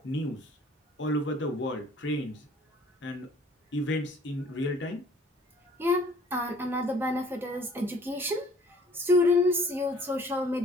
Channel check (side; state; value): both; normal; correlation 0.55